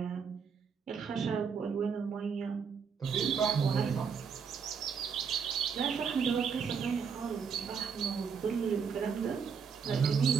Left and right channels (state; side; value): quieter; left; 6.3 dB